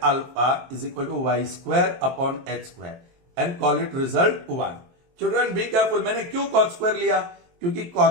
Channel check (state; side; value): late; left; 23 ms